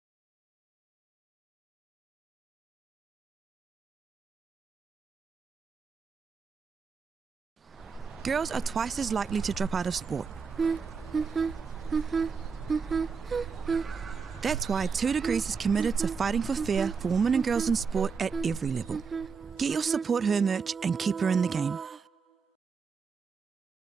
Girls are twice as likely to drop out of sport. That's why 2 Degrees is committed to fighting for fair for women and girls in sport at every level. Get your Support Her merch and keep her in the game.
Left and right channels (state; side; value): quieter; left; 5.5 dB